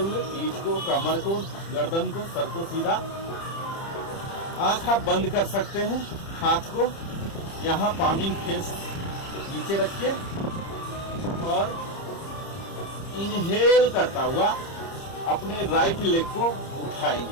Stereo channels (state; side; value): late; right; 30 ms